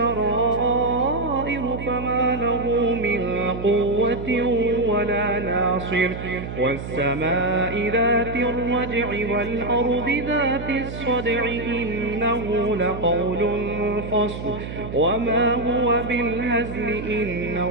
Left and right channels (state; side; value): noise; right; hum, 8 dB below the sound